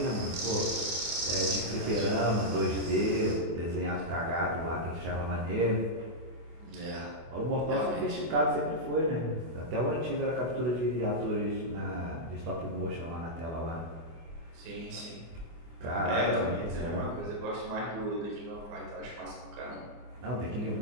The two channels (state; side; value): late; left; 24 ms